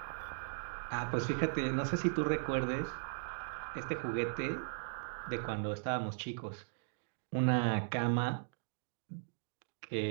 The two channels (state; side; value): silent; left; digital silence